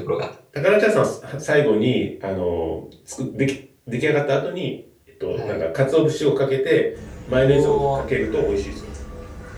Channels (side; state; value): both; identical; correlation 1.00